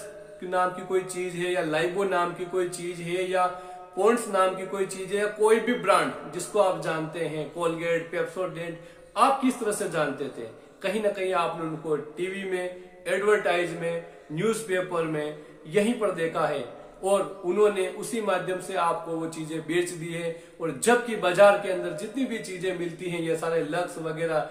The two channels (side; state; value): both; identical; correlation 1.00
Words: नाम की कोई चीज है, या लाइबो नाम की कोई चीज है, या पॉन्ड्स नाम की कोई चीज है, या कोई भी ब्रांड जिसको आप जानते हैं, कोलगेट, पेप्सोडेंट, आप किस तरह से जानते थे? कहीं ना कहीं आपने उनको टीवी में, एडवर्टाइज में, न्यूज़पेपर में यहीं पर देखा है, और उन्होंने उसी माध्यम से आपको वो चीजें बेच दी है। और जबकि बाजार के अंदर जितनी भी चीजें मिलती हैं, ये सारे लक्स वगैरह,